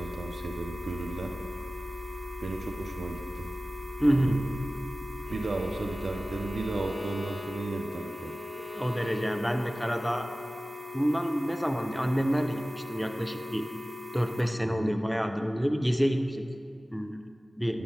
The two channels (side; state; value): both; normal; correlation 0.97